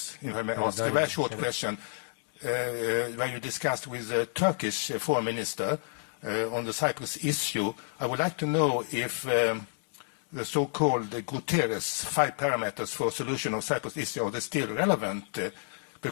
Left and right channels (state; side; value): silent; right; 58 dB below the other